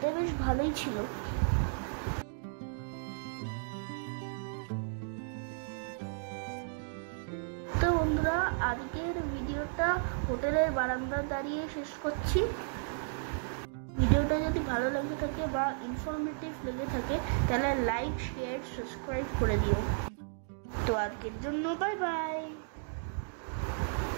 বেশ ভালোই ছিল। তো বন্ধুরা, আজকের ভিডিওটা হোটেলের বারান্দায় দাঁড়িয়ে শেষ করছি। ভিডিওটা যদি ভালো লেগে থাকে বা ইনফরমেটিভ লেগে থাকে তাহলে লাইক, শেয়ার, সাবস্ক্রাইব করে দিও। তো আজকের জন্য বাই বাই।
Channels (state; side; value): silent; left; digital silence